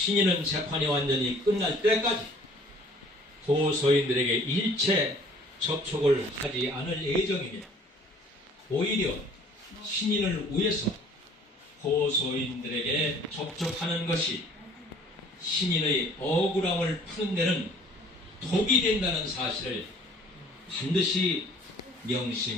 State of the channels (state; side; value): normal; both; correlation 0.54